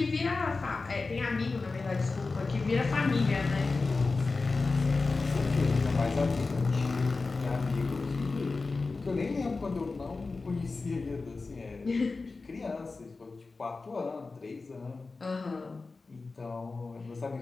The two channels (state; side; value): quieter; right; 3.9 dB